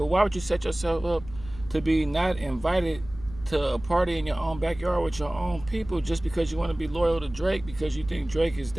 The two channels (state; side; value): noise; left; rumble, 16 dB below the sound